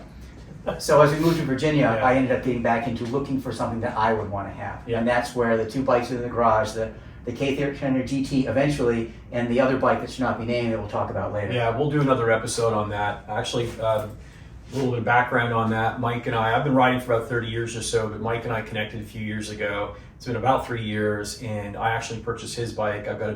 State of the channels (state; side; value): identical; both; correlation 1.00